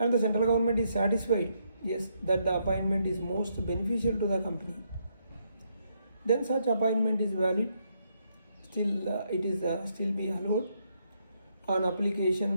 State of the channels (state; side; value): inverted; both; correlation -0.76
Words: the central government is satisfied, yes, that the appointment is most beneficial to the company, then such appointment is valid. Still, it is still be allowed on